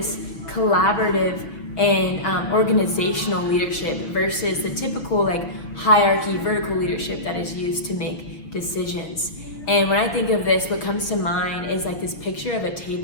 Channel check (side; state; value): right; late; 6.6 ms